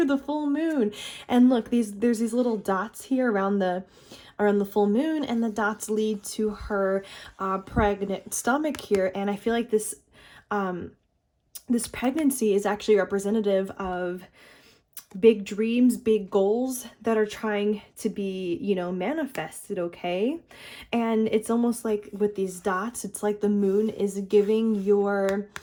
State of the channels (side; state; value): both; identical; correlation 1.00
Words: the full moon. And look, there's these little dots here around the full moon, and the dots lead to her pregnant stomach here. And I feel like this this pregnancy is actually representative of big dreams, big goals that are trying to be, you know, manifested, okay? And it's almost like with these dots, it's like the moon is giving your